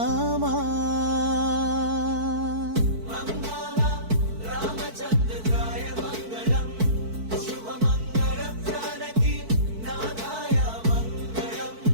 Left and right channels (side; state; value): left; late; 4.5 ms